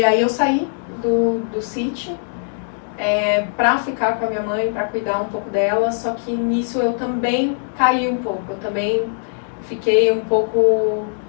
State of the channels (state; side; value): silent; right; digital silence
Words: aí eu saí do City para ficar com a minha mãe, para cuidar um pouco dela, só que nisso eu também caí um pouco, eu também fiquei um pouco